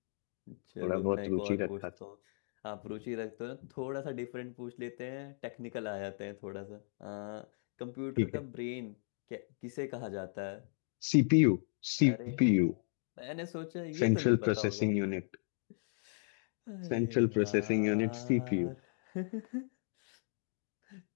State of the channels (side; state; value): right; silent; digital silence